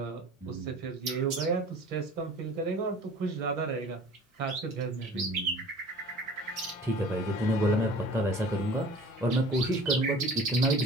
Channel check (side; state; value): both; normal; correlation 0.45